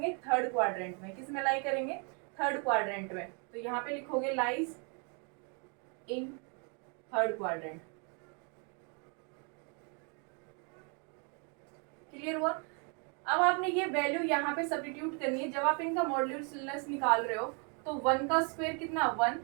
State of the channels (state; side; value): quieter; left; 37.0 dB